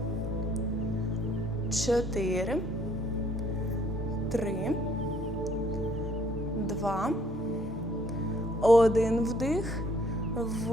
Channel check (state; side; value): normal; both; correlation 0.63